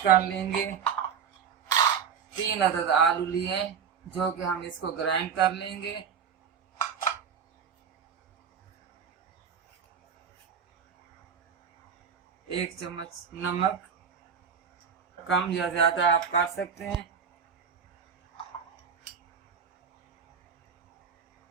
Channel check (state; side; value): quieter; left; 7.1 dB